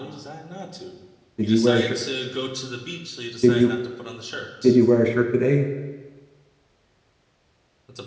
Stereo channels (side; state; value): both; identical; correlation 1.00